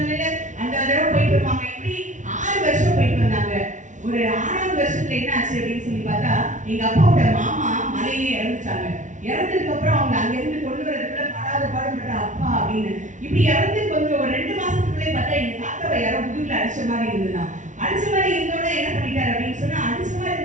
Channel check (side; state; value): left; late; 0.36 ms